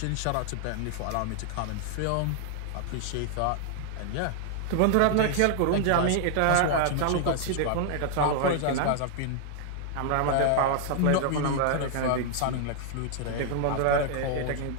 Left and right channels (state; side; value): different; both; correlation 0.00